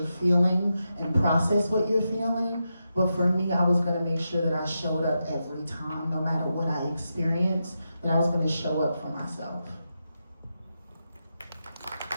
feeling and process what you're feeling. But for me, I was gonna make sure that I showed up every time, no matter what I experienced, that I was gonna show up for myself.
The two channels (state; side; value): inverted; both; correlation -0.87